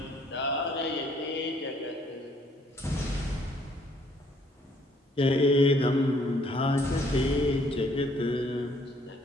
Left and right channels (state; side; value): normal; both; correlation 0.64